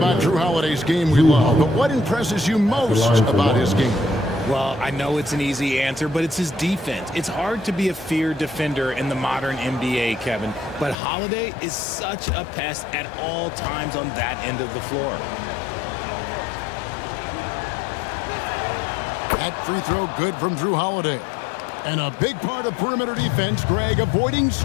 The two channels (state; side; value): drops out; right; at 11.0 s